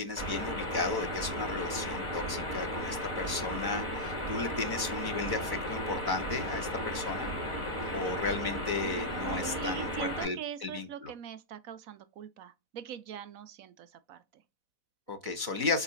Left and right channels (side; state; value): left; late; 4.0 ms